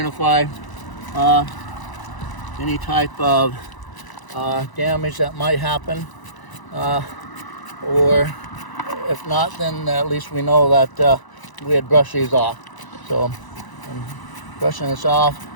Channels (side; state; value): right; late; 1.0 ms